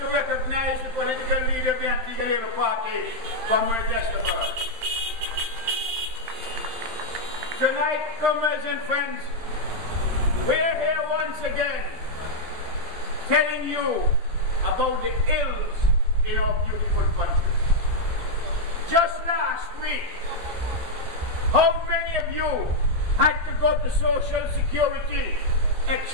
recognize the political leader of the Antigua Labour Party, Comrade Westerberg. Tonight, comrades and friends, we are here once again telling you about the ills in our beautiful country. Just last week, how many of you had to go to Social Security,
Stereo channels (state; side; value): late; left; 12 ms